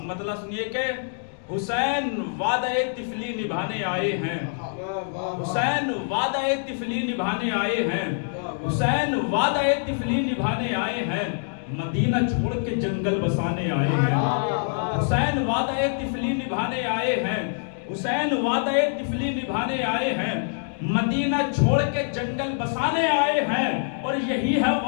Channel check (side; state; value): right; silent; digital silence